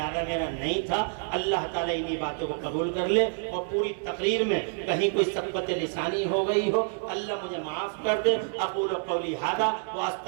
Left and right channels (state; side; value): silent; left; 59 dB below the other